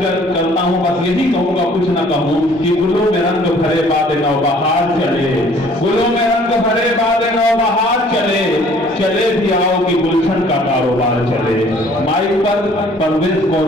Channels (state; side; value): normal; both; correlation 0.56